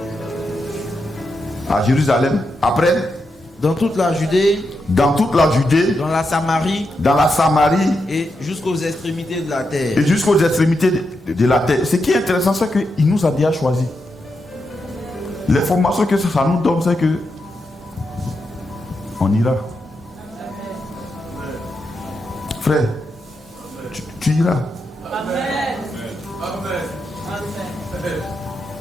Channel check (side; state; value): both; normal; correlation 0.85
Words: à Jérusalem. Après, dans toute la Judée. Dans toute la Judée. Dans la Samarie. Dans la Samarie. Et jusqu'aux extrémités de la terre. Et jusqu'aux extrémités de la terre. Ce qui est intéressant, c'est qu'il nous a déjà choisi. L'information que ça nous donne, c'est que on ira. Frère, tu iras. Amen.